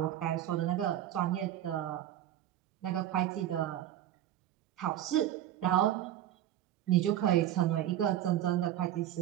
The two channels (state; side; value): quieter; left; 12.1 dB